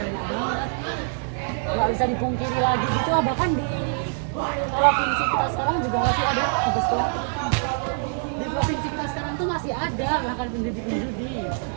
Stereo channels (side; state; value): left; silent; 62 dB below the other